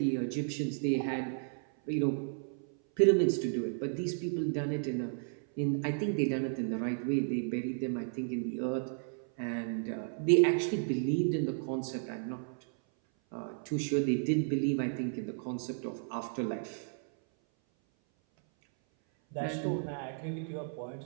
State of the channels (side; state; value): left; silent; 55 dB below the other